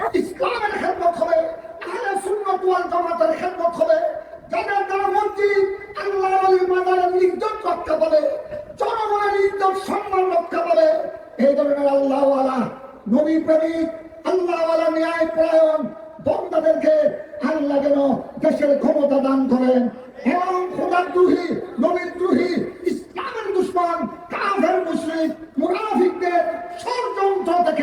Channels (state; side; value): identical; both; correlation 1.00